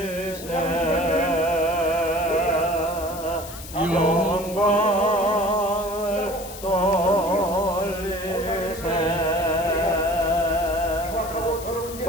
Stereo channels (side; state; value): left; noise; hiss, 14 dB below the sound